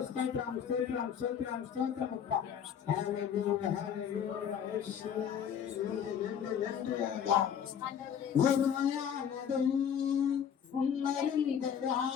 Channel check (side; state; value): right; quieter; 8.3 dB